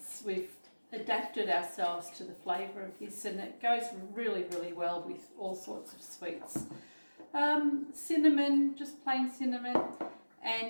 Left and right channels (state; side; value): inverted; both; correlation -1.00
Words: We've adapted ourselves to the flavour of this, and it goes really, really well with all sorts of sweets. Cinnamon, just plain cinnamon,